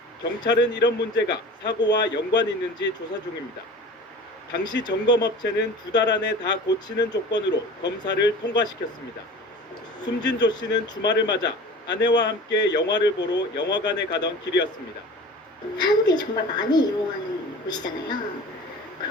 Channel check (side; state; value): both; normal; correlation 0.39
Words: 경찰은 이런 문제가 사고와 연관이 있는지 조사 중입니다. 당시 점검업체는 2달 안에 다 고치는 조건으로 검사를 통과시켰습니다. 숨진 조 씨는 주말을 맞아 아내와 함께 영화를 보러 영화관에 가던 길이었습니다. 사람들이 정말 많이 이용하는 곳이잖아요.